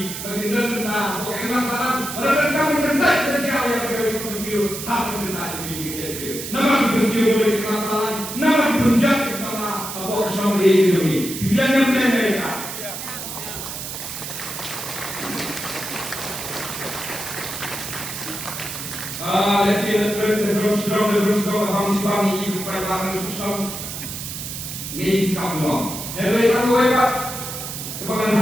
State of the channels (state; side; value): noise; right; hiss, 7 dB below the sound